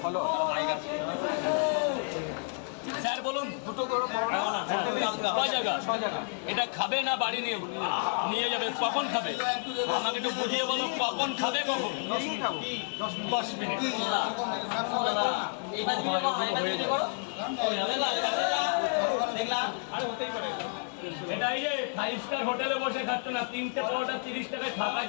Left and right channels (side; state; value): right; silent; 58 dB below the other